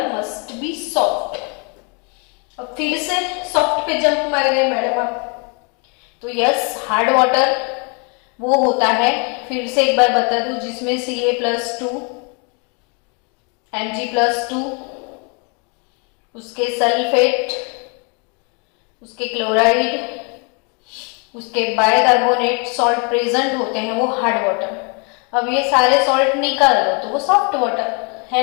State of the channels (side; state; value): right; quieter; 34.8 dB